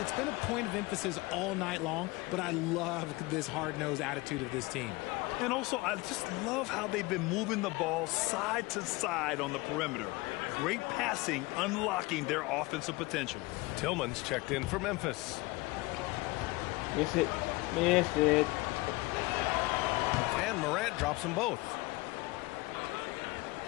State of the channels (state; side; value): quieter; right; 22.7 dB